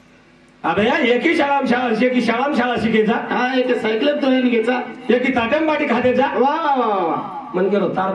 अबे यार एकी शाळा शिकायचा हा एक सायकल तो येईन घ्यायचा एकी ताटम बाटी खाद्याचा वा वा वा वा मन गेलो तार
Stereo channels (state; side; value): identical; both; correlation 1.00